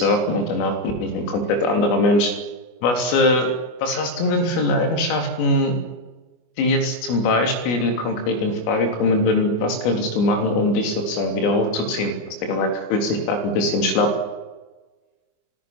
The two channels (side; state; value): right; late; 25 ms